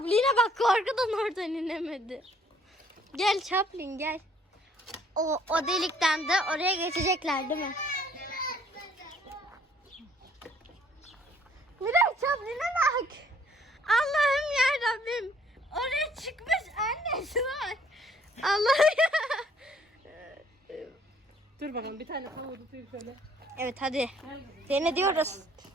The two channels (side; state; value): both; normal; correlation 0.61